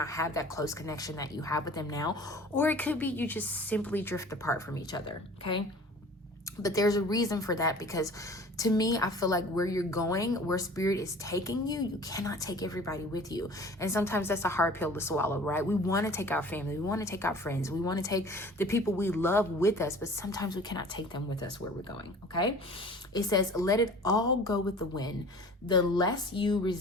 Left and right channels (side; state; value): both; normal; correlation 0.45